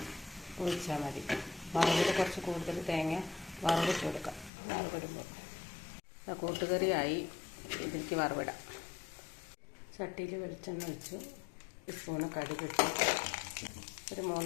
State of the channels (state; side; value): drops out; right; at 4.5 s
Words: ഒഴിച്ചാൽ മതി. വറവിൽ കുറച്ച് കൂടുതൽ തേങ്ങ വറവിട്ട് കൊടുക്കാം. വറവിടുമ്പോൾ കൂട്ടുകറിയായി. ഇതിലേക്ക് വറവിടാം. ചട്ടിയിൽ വെളിച്ചെണ്ണ ഒഴിച്ചു, 1 സ്പൂണ് കടുക് ഇട്ടു, ഒരു